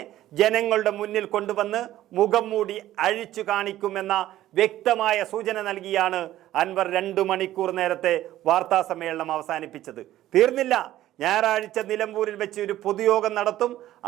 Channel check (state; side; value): quieter; left; 13.9 dB